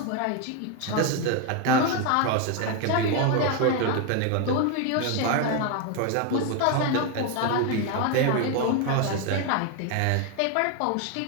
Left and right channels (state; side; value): different; both; correlation 0.01